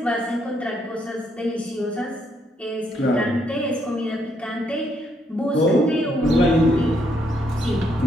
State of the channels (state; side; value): normal; both; correlation 0.74